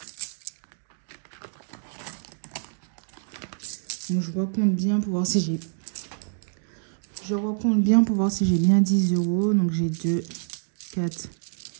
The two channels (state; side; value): silent; left; digital silence